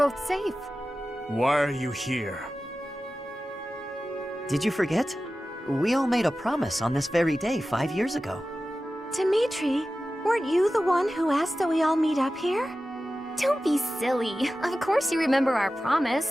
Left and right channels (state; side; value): normal; both; correlation 0.94